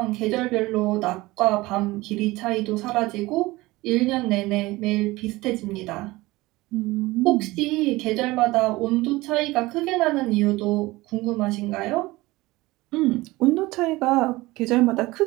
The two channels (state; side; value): quieter; left; 20.2 dB